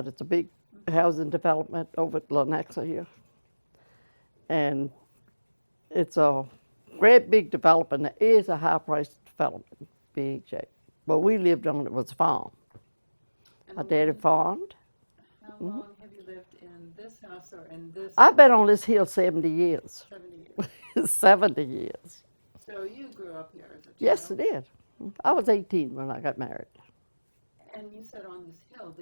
It's a big Mm-hmm. housing development over at Lenexa here. And it's a great big development. It is a high priced development, big shape. But we lived on it was a farm. And My daddy farmed. how Hmm. long have you lived in this house or in this I've been on building? this hill 70 years. 70 years. 70 years. So you grew up here as a Yes, I child. did. I was 18 when I got married. And you said on this hill,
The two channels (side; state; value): both; inverted; correlation -1.00